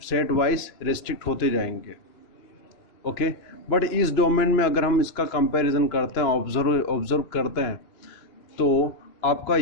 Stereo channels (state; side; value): late; right; 3.0 ms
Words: वाइज रिस्ट्रिक्ट होते जाएंगे। ओके, बट इस डोमेन में अगर हम इसका कंपैरिजन करते हैं, ऑब्जर्व करते हैं, तो आपका